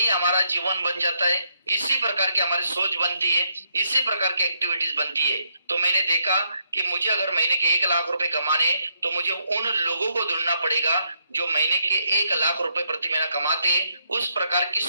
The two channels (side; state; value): both; inverted; correlation -0.76